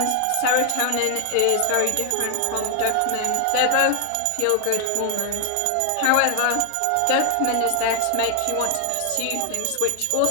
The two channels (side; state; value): both; different; correlation 0.00